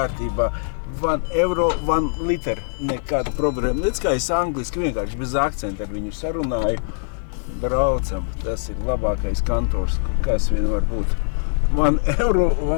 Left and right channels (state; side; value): silent; right; digital silence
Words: €1, 1 liter, nekāda problēma. Redz, kā es angliski vienkārši bez akcenta ar viņu sarunāju. Braucam, tas ir labākais kantors, kas vien var būt. €1,